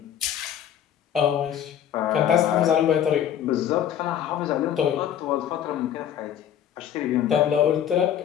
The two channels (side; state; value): right; quieter; 9.8 dB